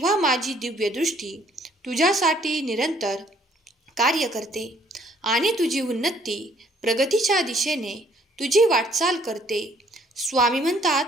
माझी दिव्य दृष्टी तुझ्यासाठी निरंतर कार्य करते आणि तुझी उन्नती प्रगतीच्या दिशेने तुझी वाटचाल करते. स्वामी म्हणतात,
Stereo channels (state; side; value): normal; both; correlation 0.63